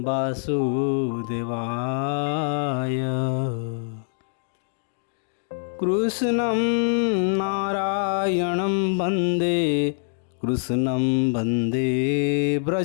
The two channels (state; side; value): silent; right; digital silence